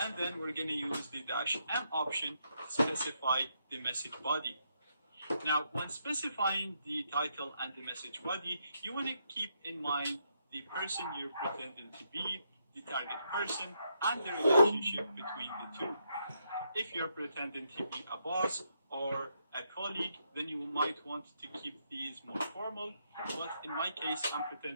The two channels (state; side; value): inverted; both; correlation -0.78